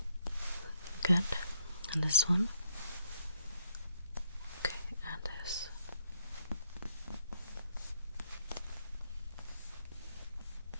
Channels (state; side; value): inverted; both; correlation -0.73